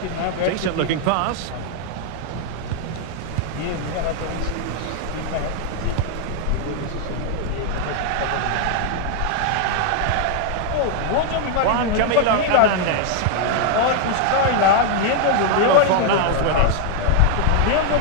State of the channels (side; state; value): both; different; correlation 0.00